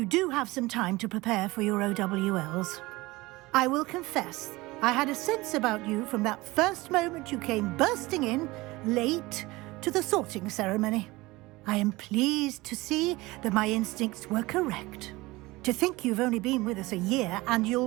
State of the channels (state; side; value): quieter; left; 21.0 dB